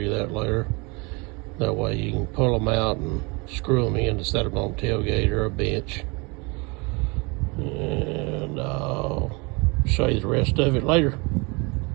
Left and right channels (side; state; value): left; quieter; 28.6 dB